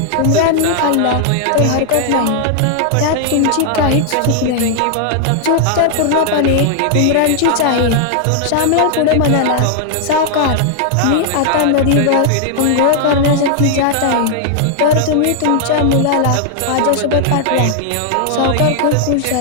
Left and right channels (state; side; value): different; both; correlation 0.00